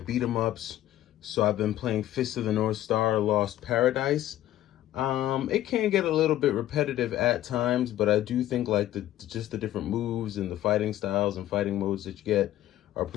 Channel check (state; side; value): quieter; right; 13.4 dB